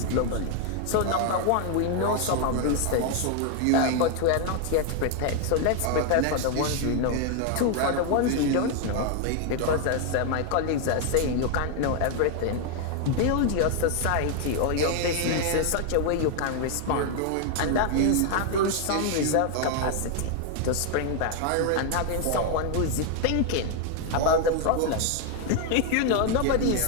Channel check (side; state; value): both; different; correlation 0.00